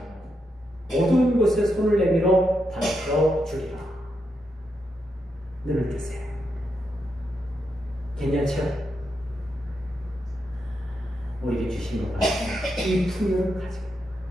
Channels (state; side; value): normal; both; correlation 0.83